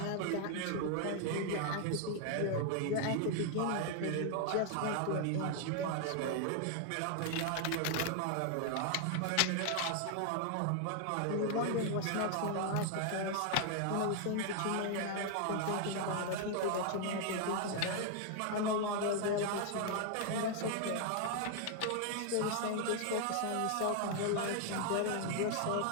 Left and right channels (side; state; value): both; different; correlation 0.00